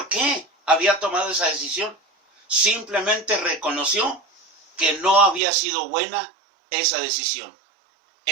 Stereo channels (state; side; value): drops out; left; at 5.4 s